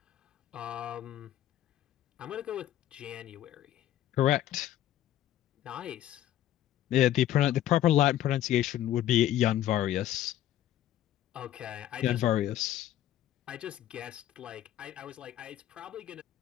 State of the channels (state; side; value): quieter; right; 12.5 dB